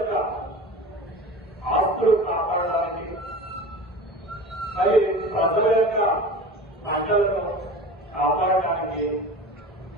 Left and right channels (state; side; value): normal; both; correlation 0.35